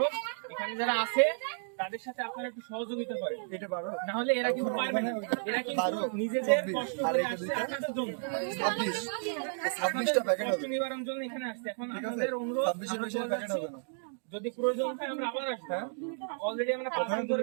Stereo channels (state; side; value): silent; left; digital silence